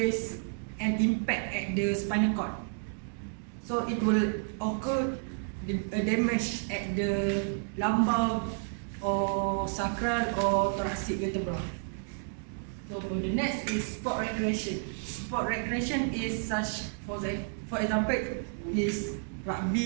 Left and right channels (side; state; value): left; silent; 57 dB below the other